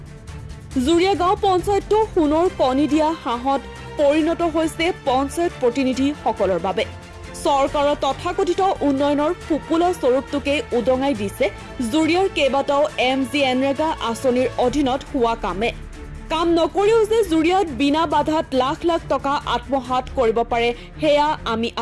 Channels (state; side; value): identical; both; correlation 1.00